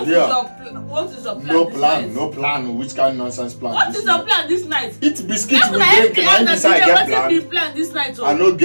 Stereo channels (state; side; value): inverted; both; correlation -1.00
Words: here. What is your plan? No plan. Which kind of nonsense plan? What is your plan this night? Eat biscuits with drink and decide get plan this night. I no